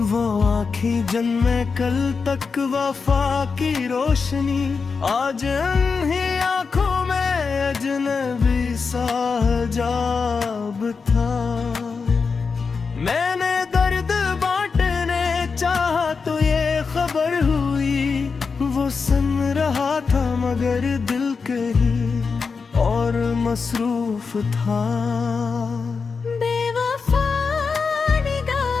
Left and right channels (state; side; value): quieter; right; 5.0 dB